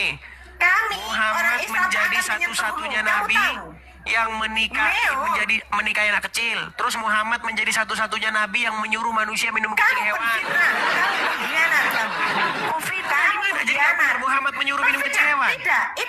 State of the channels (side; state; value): both; identical; correlation 1.00